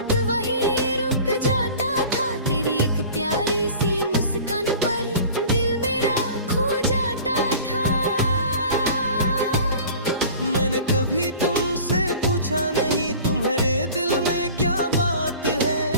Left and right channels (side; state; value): both; inverted; correlation -0.42